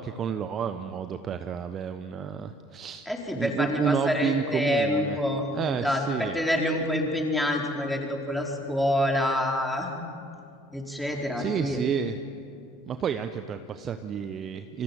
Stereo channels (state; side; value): normal; both; correlation 0.62